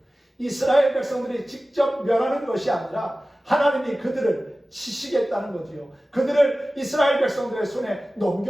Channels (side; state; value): both; normal; correlation 0.96